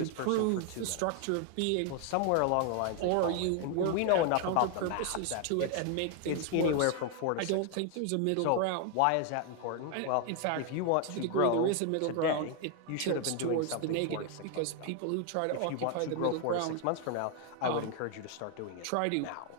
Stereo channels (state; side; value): different; both; correlation 0.01